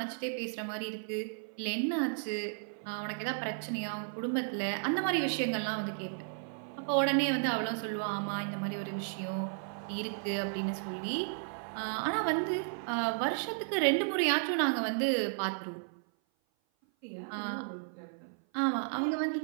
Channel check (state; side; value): silent; left; 55 dB below the other